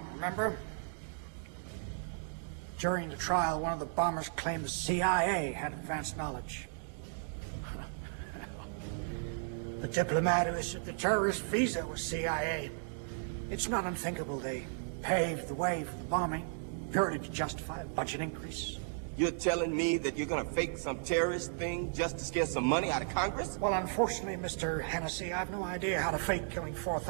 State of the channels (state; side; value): silent; left; digital silence